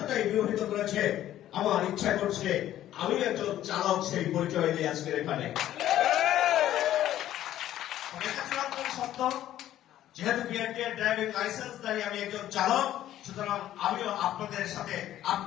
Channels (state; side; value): quieter; right; 12.7 dB